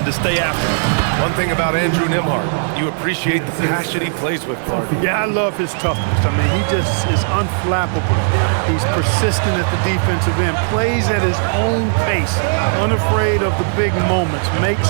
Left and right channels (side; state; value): left; silent; digital silence